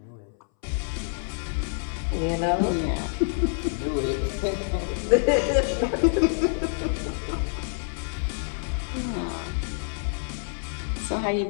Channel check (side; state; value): right; silent; 60 dB below the other